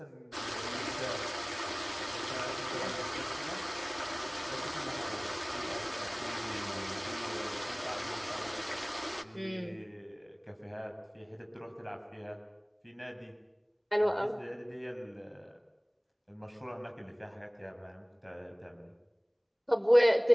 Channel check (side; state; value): both; identical; correlation 1.00